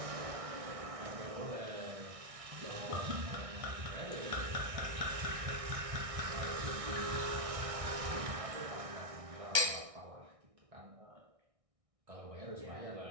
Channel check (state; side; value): late; left; 1.6 ms